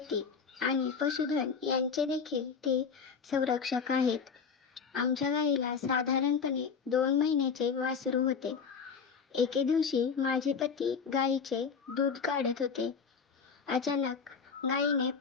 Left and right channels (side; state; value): right; quieter; 5.9 dB